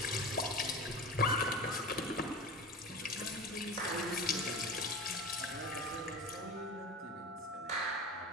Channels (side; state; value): both; normal; correlation 0.30